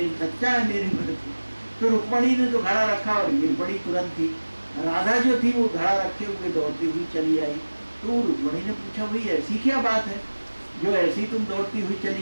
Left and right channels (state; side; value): inverted; both; correlation -1.00